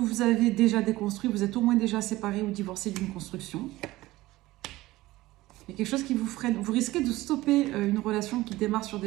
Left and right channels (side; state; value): left; quieter; 18.0 dB